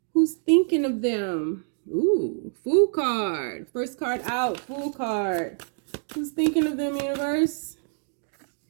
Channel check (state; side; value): silent; left; 61 dB below the other